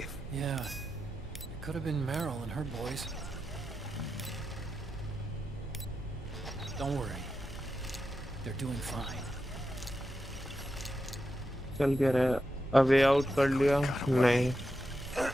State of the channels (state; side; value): normal; both; correlation 0.88